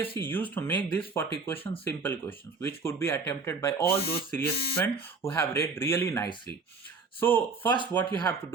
used to make these 40 questions simple questions, which could be attempted by all those serious students who have read really nicely. So first what you have to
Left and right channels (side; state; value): left; quieter; 4.3 dB